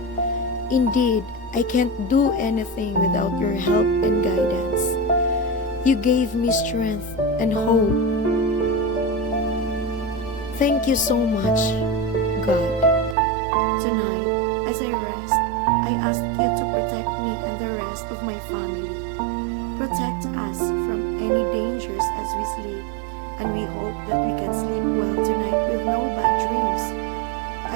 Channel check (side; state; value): left; drops out; at 13.2 s